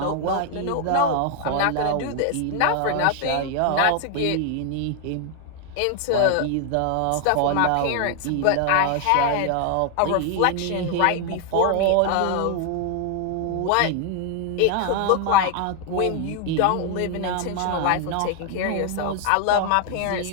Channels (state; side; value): different; both; correlation 0.00